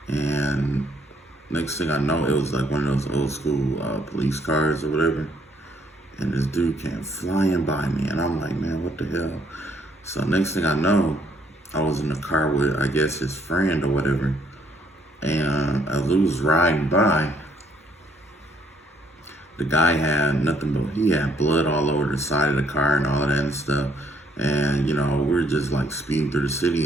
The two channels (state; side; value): normal; both; correlation 0.67